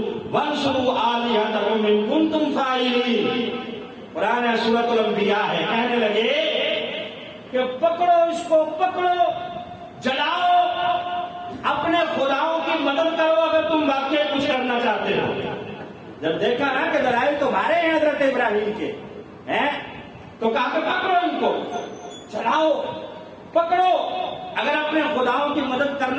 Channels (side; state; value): both; identical; correlation 1.00